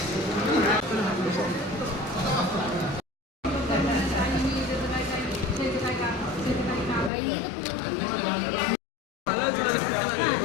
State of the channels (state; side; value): drops out; right; at 7.1 s